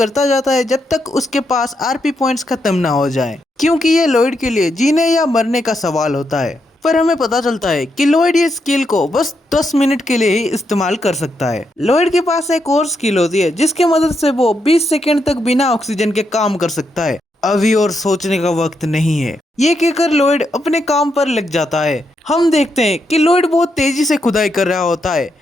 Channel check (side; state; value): both; normal; correlation 0.81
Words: जाता है जब तक उसके पास आरपी पॉइंट्स खत्म ना हो जाए, क्योंकि ये लॉयड के लिए जीने या मरने का सवाल होता है। पर हमें पता चलता है कि लॉयड ये स्किल को बस 10 मिनट के लिए ही इस्तेमाल कर सकता है। लॉयड के पास एक और स्किल होती है जिसकी मदद से वो 20 सेकंड तक बिना ऑक्सीजन के काम कर सकता है। अभी और सोचने का वक्त नहीं है, ये कहकर लॉयड अपने काम पर लग जाता है। हम देखते हैं कि लॉयड बहुत तेजी से खुदाई कर रहा होता है,